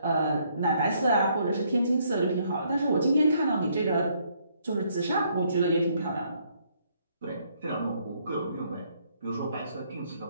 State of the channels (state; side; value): inverted; both; correlation -0.69